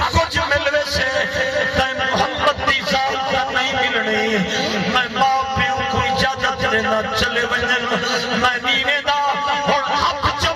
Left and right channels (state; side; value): identical; both; correlation 1.00